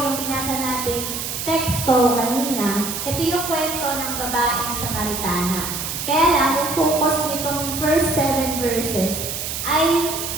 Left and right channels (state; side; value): noise; right; hiss, 5 dB below the sound